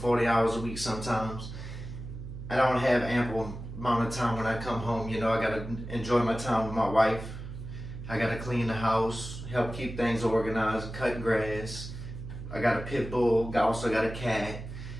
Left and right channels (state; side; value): noise; right; hum, 10 dB below the sound